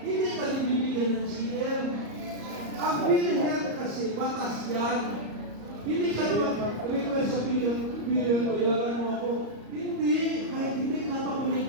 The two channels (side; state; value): left; late; 34 ms